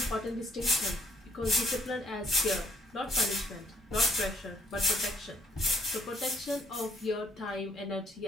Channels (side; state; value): both; normal; correlation 0.68